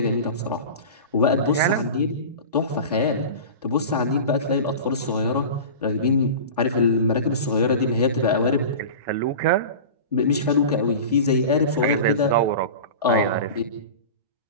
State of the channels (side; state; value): both; inverted; correlation -0.32